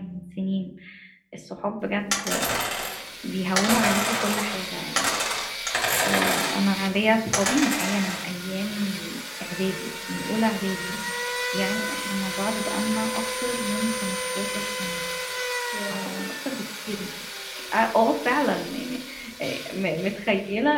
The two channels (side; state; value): both; identical; correlation 1.00